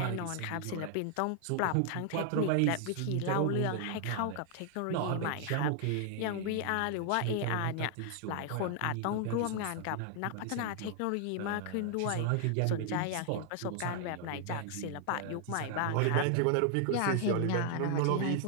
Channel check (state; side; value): different; both; correlation 0.00